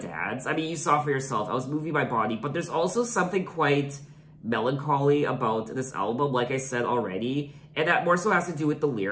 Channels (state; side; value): identical; both; correlation 1.00